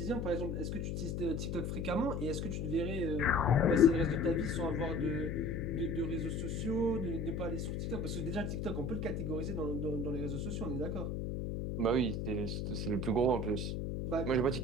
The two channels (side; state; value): left; noise; hum, 2 dB below the sound